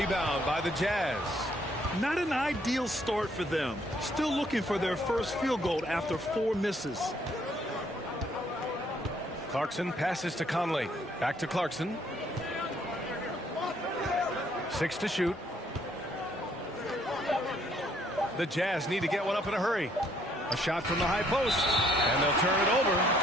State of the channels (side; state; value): both; normal; correlation 0.66